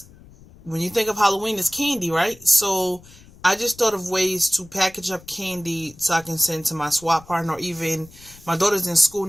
when you think of Halloween, it's candy, right? So, I just thought of ways to package up candy so I can send to my swap partner, or even my daughter's in school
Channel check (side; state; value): left; noise; rumble, 23 dB below the sound